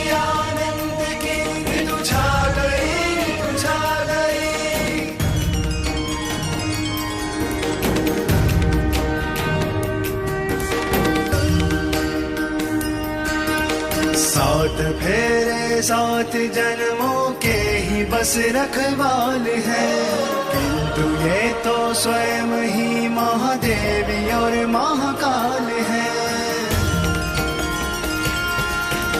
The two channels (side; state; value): both; identical; correlation 1.00